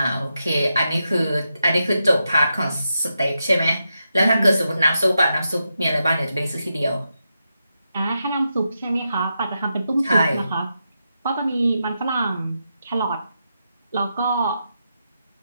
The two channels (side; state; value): both; inverted; correlation -0.86